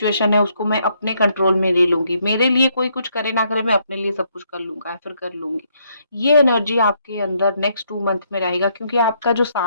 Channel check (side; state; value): both; inverted; correlation -0.72